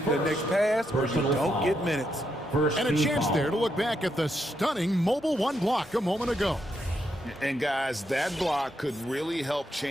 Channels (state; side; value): normal; both; correlation 0.80